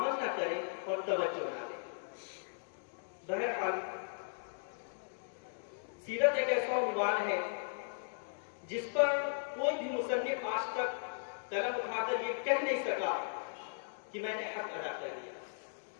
نہ کریں اور توجہ نہ دیں. بہرحال سیرت ایک ایسا عنوان ہے جس پر کوئی بھی مصنف آج تک قلم اٹھا کر یہ کہہ نہیں سکا کہ میں نے حق ادا کر دیا.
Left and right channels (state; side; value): silent; right; digital silence